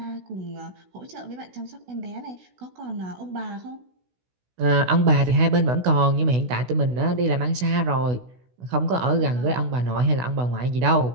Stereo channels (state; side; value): late; left; 16 ms